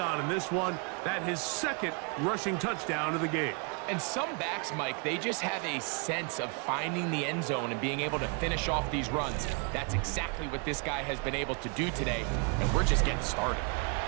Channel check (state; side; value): quieter; left; 35.4 dB